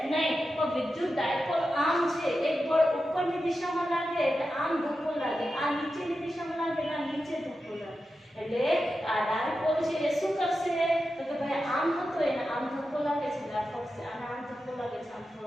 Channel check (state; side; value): normal; both; correlation 0.91